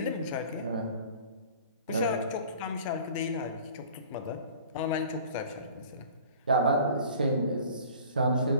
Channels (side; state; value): both; inverted; correlation -0.46